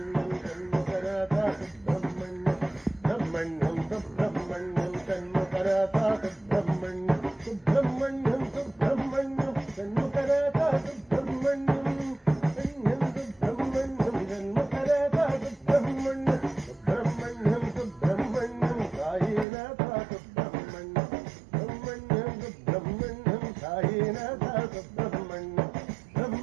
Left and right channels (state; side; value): drops out; left; at 19.5 s